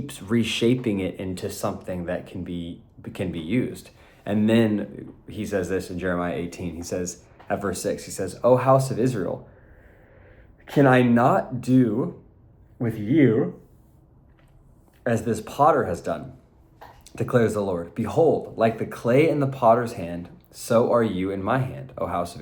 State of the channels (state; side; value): identical; both; correlation 1.00